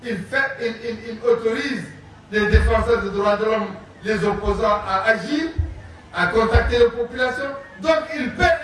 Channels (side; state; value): both; identical; correlation 1.00